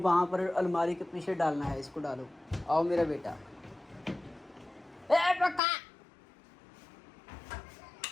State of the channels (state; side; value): drops out; right; at 5.6 s